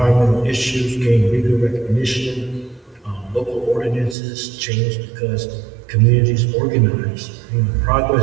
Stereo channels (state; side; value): drops out; left; at 4.2 s